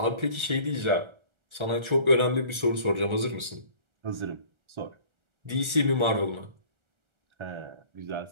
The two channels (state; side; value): late; left; 1.4 ms